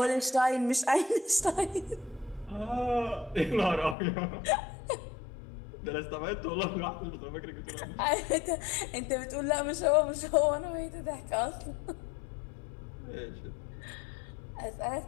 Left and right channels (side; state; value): right; drops out; at 4.0 s